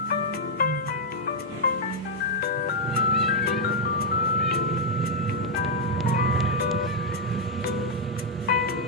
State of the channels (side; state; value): both; normal; correlation -0.03